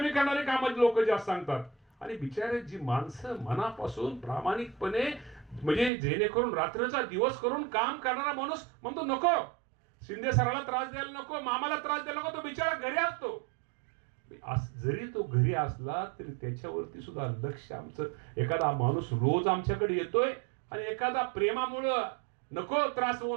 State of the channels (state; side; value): drops out; left; at 5.9 s